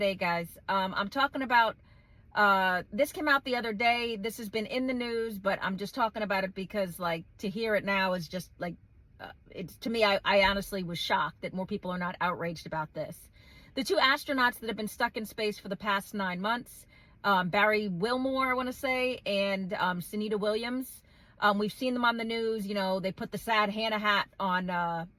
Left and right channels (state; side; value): identical; both; correlation 1.00